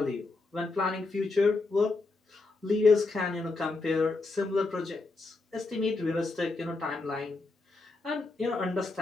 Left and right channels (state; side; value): quieter; right; 3.5 dB